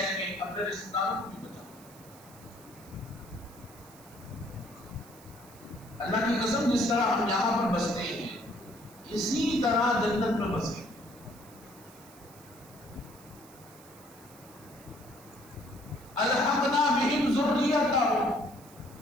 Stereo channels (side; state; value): right; noise; hiss, 22 dB below the sound